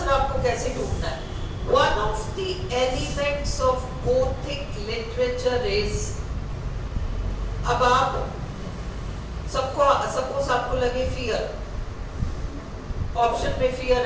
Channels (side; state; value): both; identical; correlation 1.00